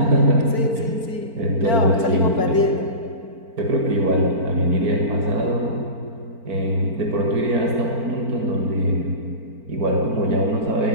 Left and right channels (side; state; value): left; late; 4.4 ms